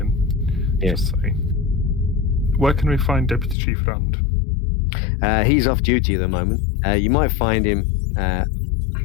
just say, where can we find Deputy Chief Rand? He's off duty at the moment. You might find him.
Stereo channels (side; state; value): right; drops out; at 3.6 s